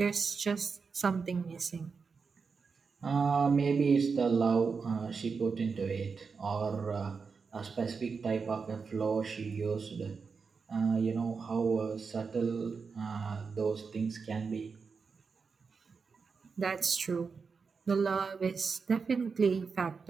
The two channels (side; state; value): left; quieter; 5.2 dB